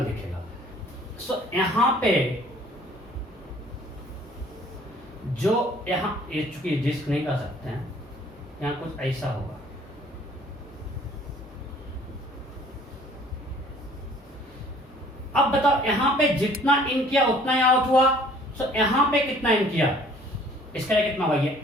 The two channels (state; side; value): normal; both; correlation 0.55